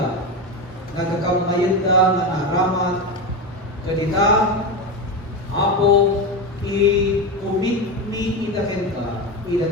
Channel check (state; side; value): normal; both; correlation 0.18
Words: nagkakamayan da, nga naramat, kadita, apo, i-commit ni idaken ka,